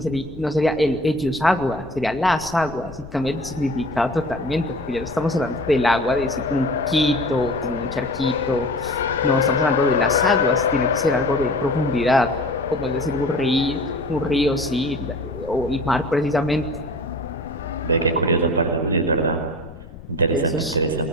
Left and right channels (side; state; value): left; noise; rumble, 17 dB below the sound